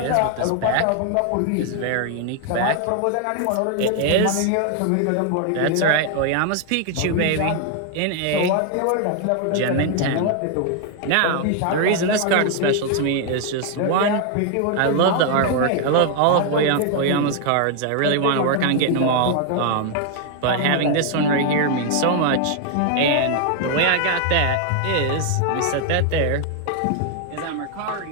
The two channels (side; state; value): both; different; correlation 0.00